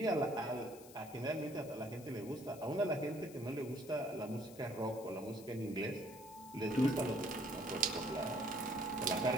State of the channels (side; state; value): left; noise; hiss, 19 dB below the sound